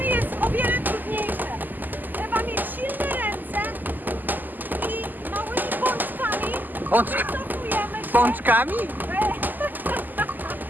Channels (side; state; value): left; late; 0.086 ms